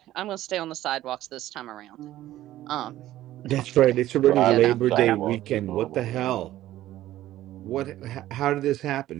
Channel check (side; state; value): left; quieter; 14.3 dB